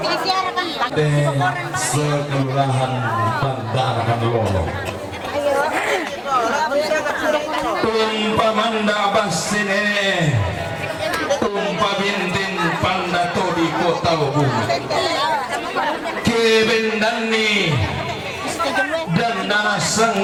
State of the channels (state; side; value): identical; both; correlation 1.00